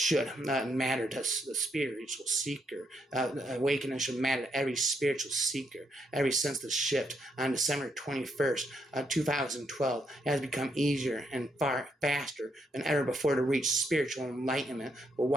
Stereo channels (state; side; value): normal; both; correlation 0.77